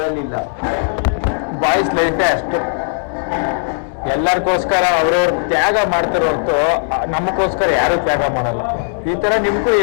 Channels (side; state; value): right; silent; digital silence